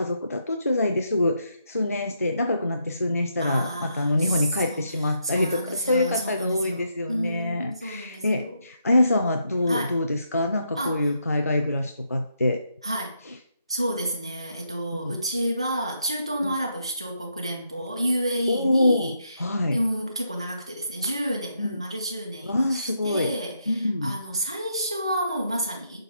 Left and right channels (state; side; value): inverted; both; correlation -0.78